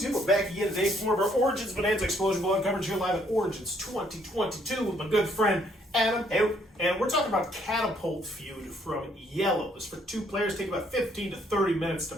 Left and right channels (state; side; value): normal; both; correlation 0.67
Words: we're back again today for more of our Origins Bonanza Explosion Ball coverage here live at Origins 2022 with my good friend Adam. Hey. And we're talking about Catapult Feud from Iello. This for 2 players, take about 15 to 30 minutes to